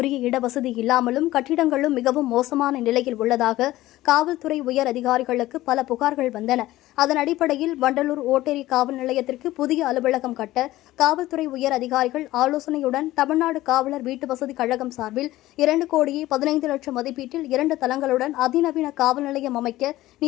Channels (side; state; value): right; quieter; 16.3 dB